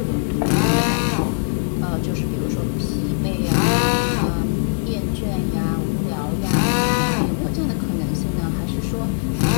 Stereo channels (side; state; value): right; silent; digital silence